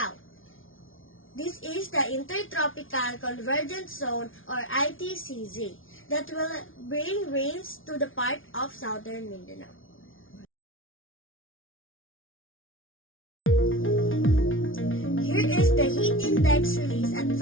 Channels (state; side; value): late; right; 0.58 ms